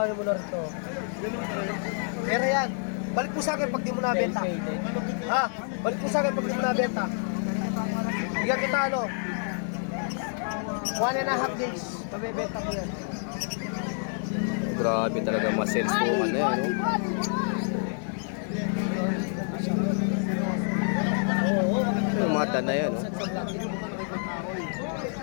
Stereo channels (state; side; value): silent; right; 59 dB below the other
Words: mo na rin to. Pero yan, balik po sa akin pag di mo nabenta. Ha? Balik po sa akin pag di mo nabenta. Bigyan kita ano, 1.5 days. Pabibenta ko yan. Grabe talaga ma-sales po ano yan. Oo, Yung mata na yan. Oh.